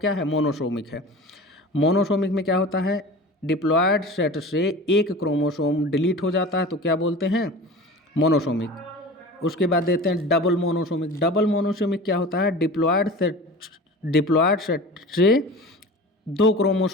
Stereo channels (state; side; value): normal; both; correlation 0.36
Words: है? मोनोसोमिक है। मोनोसोमिक में क्या होता है? डिप्लॉयड सेट से एक क्रोमोसोम डिलीट हो जाता है तो क्या बोलते हैं? मोनोसोमिक। उसके बाद देते हैं डबल मोनोसोमिक। डबल मोनोसोमिक क्या होता है? डिप्लॉयड सेट से 2